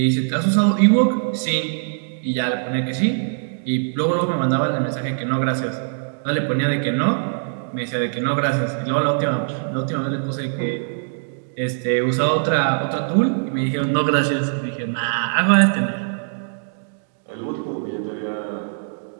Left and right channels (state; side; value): silent; left; digital silence